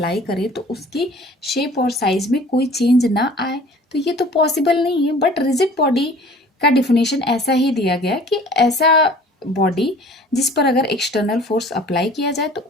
करें तो उसकी शेप और साइज में कोई चेंज ना आए? तो ये तो पॉसिबल नहीं है। बट रिजिड बॉडी का डिफिनेशन ऐसा ही दिया गया कि ऐसा बॉडी जिस पर अगर एक्सटर्नल फोर्स अप्लाई किया जाए तो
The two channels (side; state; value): both; normal; correlation 0.48